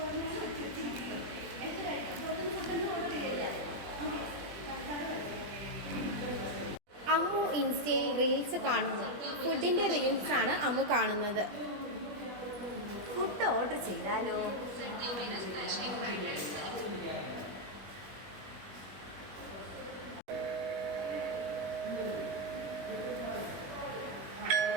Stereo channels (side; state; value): left; late; 20 ms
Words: അമ്മു ഇൻസ്റ്റയിൽ റീൽസ് കാണുന്നു. ഫുഡിൻ്റെ റീൽസാണ് അമ്മു കാണുന്നത്. ഫുഡ് ഓർഡർ ചെയ്താലോ?